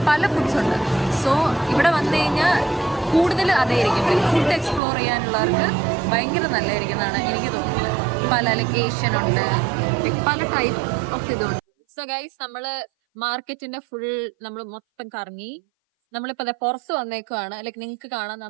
പല ഫുഡ്സ് ഉണ്ട്. സോ ഇവിടെ വന്നു കഴിഞ്ഞാൽ കൂടുതൽ അതായിരിക്കും. ലൈക്ക് ഫുഡ് എക്സ്പ്ലോർ ചെയ്യാനുള്ളവർക്ക് ഭയങ്കര നല്ലതായിരിക്കുന്നതാണ് എനിക്ക് തോന്നുന്നത്. പല ലൈക്ക് ഏഷ്യൻ ഉണ്ട്, പല ടൈപ്പ് ഓഫ് ഇതുണ്ട്. സോ ഗൈസ്, നമ്മള് മാർക്കറ്റിന്റെ ഫുൾ നമ്മൾ മൊത്തം കറങ്ങി. നമ്മളിപ്പോ അതെ പുറത്ത് വന്നേക്കുവാണ്. ലൈക്ക് നിങ്ങൾക്ക് കാണാം,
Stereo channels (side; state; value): left; drops out; at 4.8 s